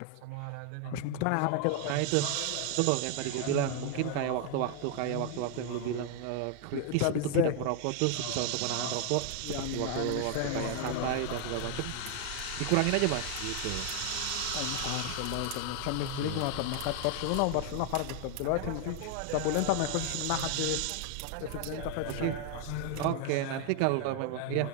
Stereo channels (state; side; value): different; both; correlation 0.00